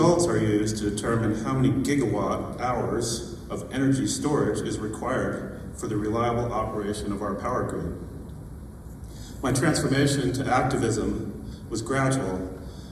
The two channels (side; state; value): both; identical; correlation 1.00